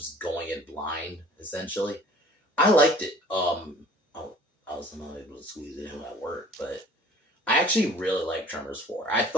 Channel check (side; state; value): both; normal; correlation 0.50